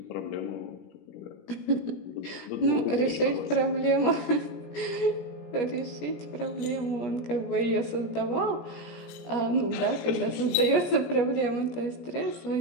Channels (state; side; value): late; right; 17 ms